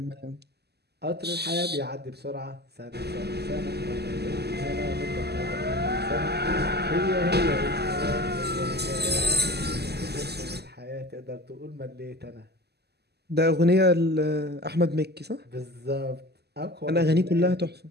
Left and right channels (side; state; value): left; late; 0.47 ms